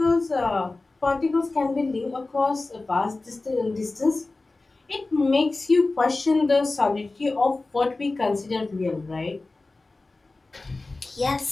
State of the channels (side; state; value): right; quieter; 3.3 dB